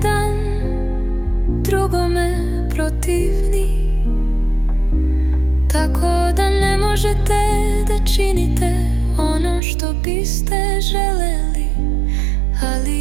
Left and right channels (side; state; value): left; drops out; at 9.6 s